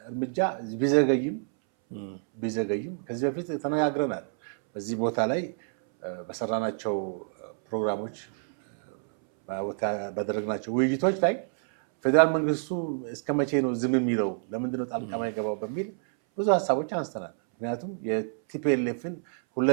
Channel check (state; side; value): silent; left; 59 dB below the other